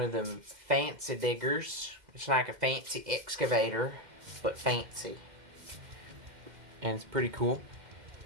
of them fancy diggers. It's like a fancy excavator, but fancy, and it's pretty cool.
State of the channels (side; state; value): left; late; 2.1 ms